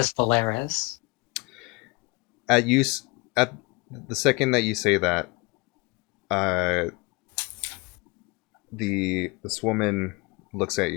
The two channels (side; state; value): right; quieter; 26.8 dB